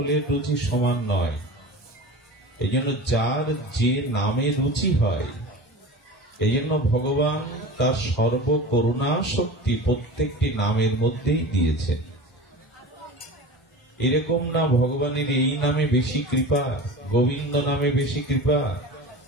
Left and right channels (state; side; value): normal; both; correlation 0.33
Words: রুচি সমান নয়। এইজন্য যার যে নামে রুচি হয় এইজন্য ভগবান তার সর্ব করুণা শক্তি প্রত্যেকটি নামের মধ্যেই দিয়েছেন। এরকম না ভগবানের এই নামে বেশি কৃপা গোবিন্দ নামে বেশি কৃপা